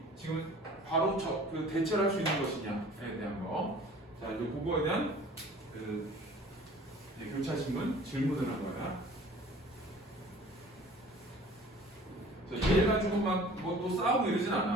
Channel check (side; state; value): both; normal; correlation 0.48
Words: 지금 바로 그 대처를 할 수 있는 것이냐에 대한 거. 자, 이제 그거에 대한 교차 신문 질문을 한 거야. 얘 가지고 막 뭐 또 싸우고 이러진